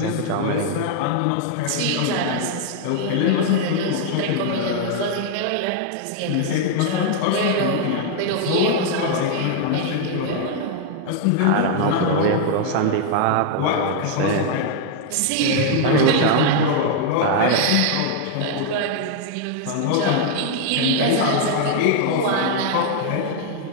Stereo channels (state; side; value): different; both; correlation 0.00